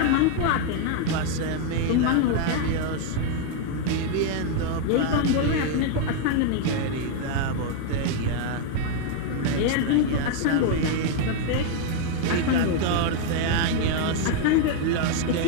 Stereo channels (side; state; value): both; different; correlation 0.00